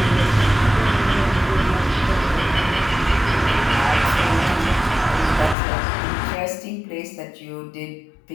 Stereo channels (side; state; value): right; drops out; at 5.6 s